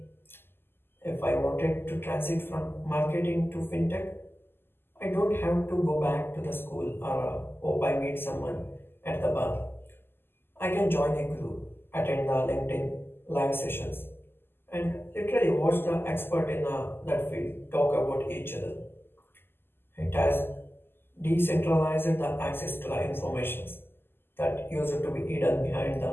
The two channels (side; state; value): right; late; 0.11 ms